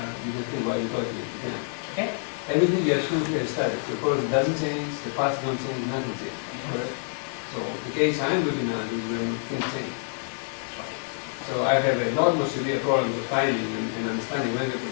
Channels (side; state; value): right; silent; 60 dB below the other